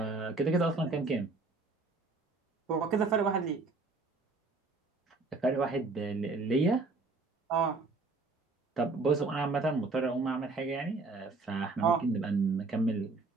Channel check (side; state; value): left; quieter; 3.8 dB